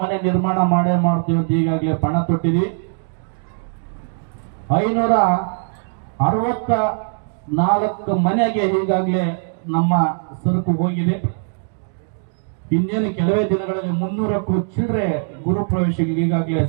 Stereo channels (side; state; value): left; silent; digital silence